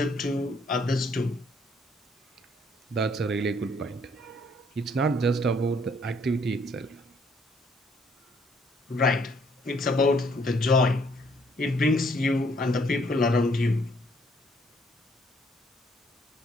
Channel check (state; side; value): normal; both; correlation 0.66